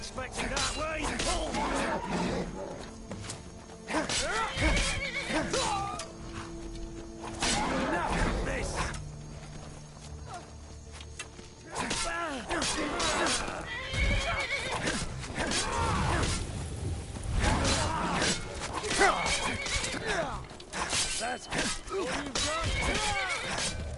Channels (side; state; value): both; identical; correlation 1.00